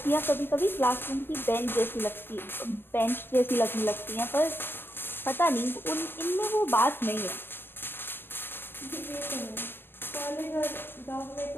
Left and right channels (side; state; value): right; late; 0.10 ms